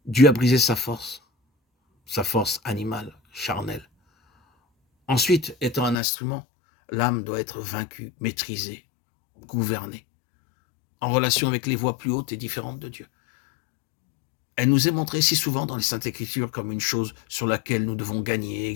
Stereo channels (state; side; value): drops out; right; at 6.0 s